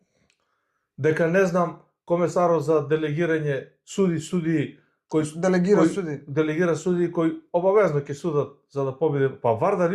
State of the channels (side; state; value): both; identical; correlation 1.00